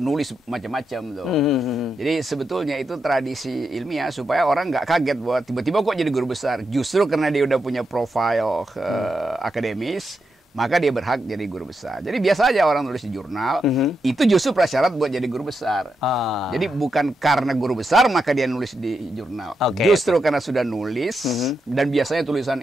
macam-macam tuh. Jadi sebetulnya itu tradisi ilmiah supaya orang nggak kaget bahwa tiba-tiba kok jadi guru besar. Justru karena dia udah punya profil akademis, maka dia berhak jadi guru besar. Jadi biasa aja orang nulis di jurnal, itu justru prasyarat buat jadi guru besar. Jadi bukan karena guru besar maka dia nulis di jurnal. Justru karena sudah nulis, dan biasanya tulisan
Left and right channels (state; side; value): normal; both; correlation 0.85